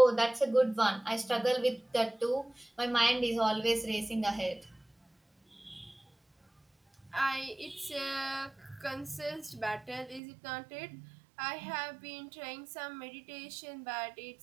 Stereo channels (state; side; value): drops out; left; at 10.2 s